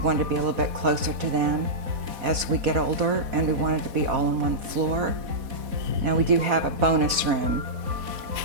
to be a little bit closer to them as we get older, and we wanted to be all on one floor. Now we do have a bonus room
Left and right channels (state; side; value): late; left; 4.1 ms